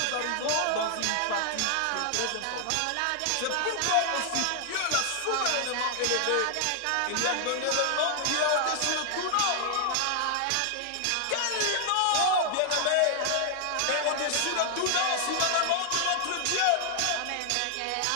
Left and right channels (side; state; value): both; different; correlation 0.00